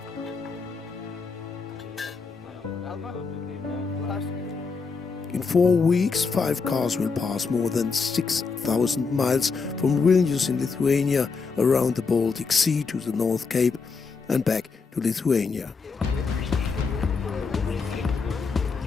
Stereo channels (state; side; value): quieter; right; 4.8 dB